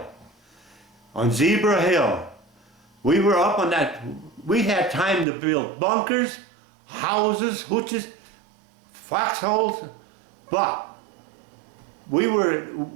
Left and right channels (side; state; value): left; drops out; at 5.2 s